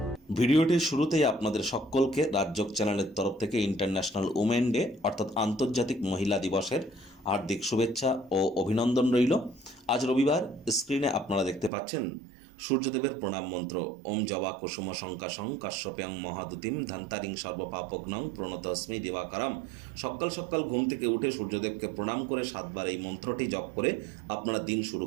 ভিডিওটির শুরুতেই আপনাদের সকলকে রাজযোগ চ্যানেলের তরফ থেকে ইন্টারন্যাশনাল উমেন ডে অর্থাৎ আন্তর্জাতিক মহিলা দিবসের হার্দিক শুভেচ্ছা ও অভিনন্দন রইল। আজ রবিবার স্ক্রিনে আপনারা দেখতে পাচ্ছেন সূর্যদেবের প্রণাম মন্ত্র ওম জবা কুসুম শঙ্কাশং কাশ্যপ্যাং মহাদুতিম ধান্তারিং সর্বপাপগ্নং প্রণতস্মি দিবাকরাম। সকাল সকাল ঘুম থেকে উঠে সূর্যদেবকে প্রণাম করে 7বার এই মন্ত্রটি জপ করে আপনারা দিন শুরু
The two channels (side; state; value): left; drops out; at 11.7 s